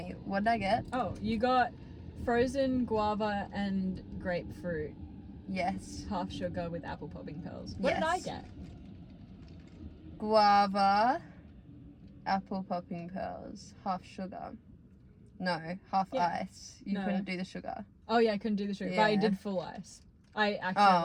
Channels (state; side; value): identical; both; correlation 1.00